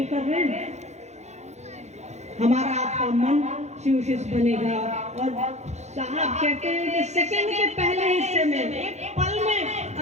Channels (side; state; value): left; late; 0.33 ms